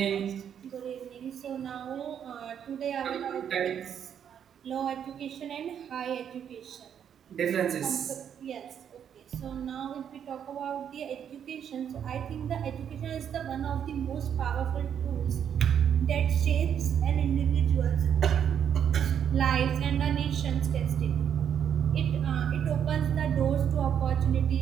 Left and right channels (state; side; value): quieter; left; 8.6 dB